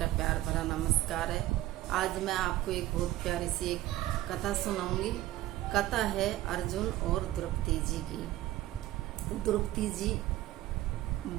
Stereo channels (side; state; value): left; quieter; 15.5 dB